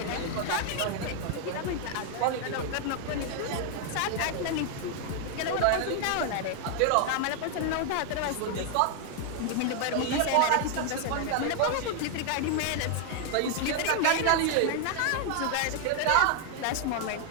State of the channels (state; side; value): different; both; correlation 0.00